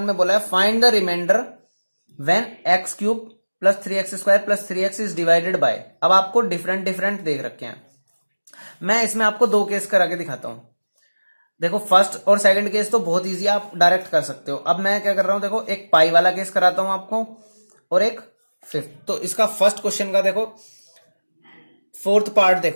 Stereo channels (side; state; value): both; inverted; correlation -1.00